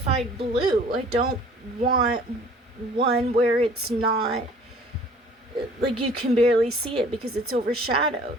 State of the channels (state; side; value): normal; both; correlation 0.52